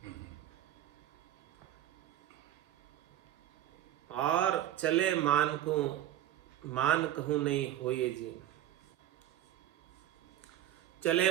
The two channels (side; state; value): left; quieter; 12.3 dB